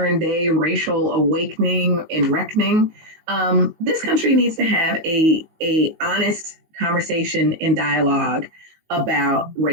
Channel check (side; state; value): left; late; 19 ms